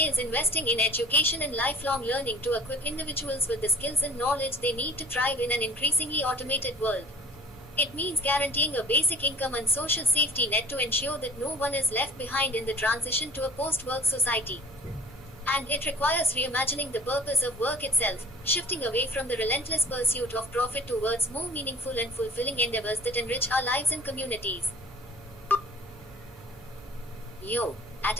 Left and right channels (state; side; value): normal; both; correlation 0.46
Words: investing in education and lifelong learning to equip individuals with the skills and knowledge they need to thrive in an increasingly automated world. It means guaranteeing a basic income and social safety net to ensure that no one is left behind in the transition to a post-work society. And it requires reimagining the purpose of work itself, shifting away from the relentless pursuit of profit towards more meaningful and fulfilling endeavors that enrich our lives and communities. At